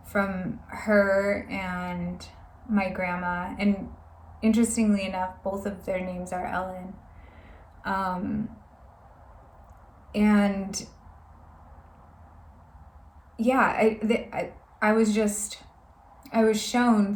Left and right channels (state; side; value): identical; both; correlation 1.00